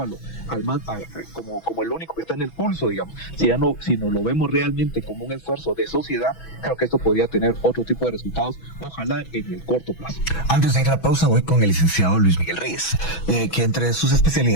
como el único que está en el pulso, digamos, si no lo vemos realmente como un esfuerzo de sociedad, creo que esto podría tener otro tipo de resultados, ojalá en el corto plazo. Antes de ir a la pausa, voy con el licenciado Luis Miguel Reyes, que entre sus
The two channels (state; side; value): late; right; 6.1 ms